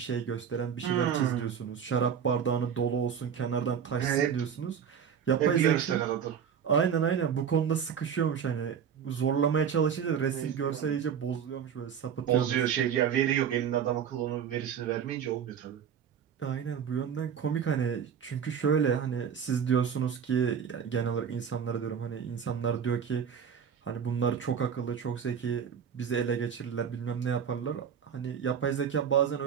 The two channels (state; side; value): quieter; left; 7.7 dB